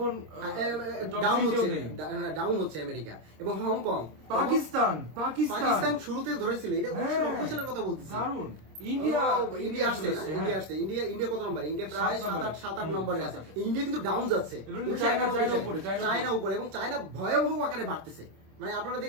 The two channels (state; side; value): late; left; 26 ms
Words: ডাউন হচ্ছে আমেরিকা এবং হংকং, পাকিস্তান শুরুতে ধরেছিল। এটা 1990 সালের কথা বলতেছি। দারুন। ইন্ডিয়া আসছে না? ইন্ডিয়া কত নম্বরে? ইন্ডিয়া প্রায় 7-8 নম্বরে আছে। ইন্ডিয়া কিন্তু ডাউন যাচ্ছে, চায়না উপরে, এবং চায়না ভয়াবহ আকারে বাড়তেছে। মানে আপনারা